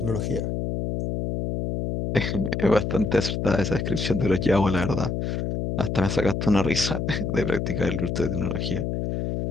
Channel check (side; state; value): left; noise; hum, 2 dB below the sound